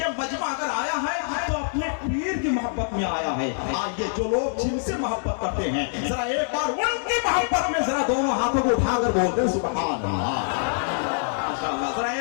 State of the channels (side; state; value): right; silent; digital silence